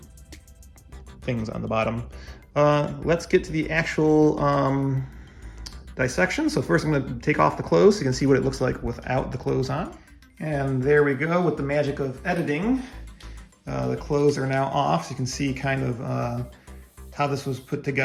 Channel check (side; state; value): both; identical; correlation 1.00